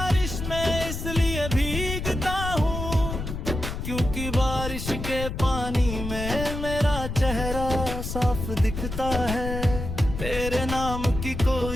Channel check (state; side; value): noise; left; rumble, 5 dB below the sound